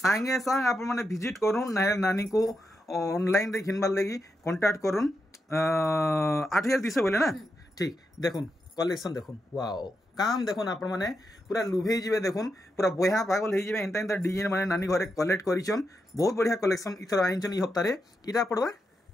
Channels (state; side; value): normal; both; correlation 0.85